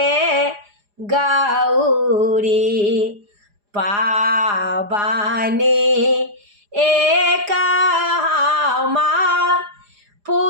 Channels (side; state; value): left; late; 4.9 ms